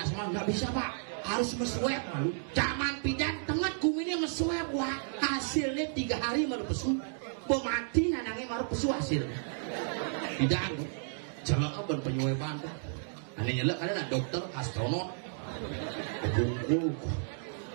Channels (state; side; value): silent; left; digital silence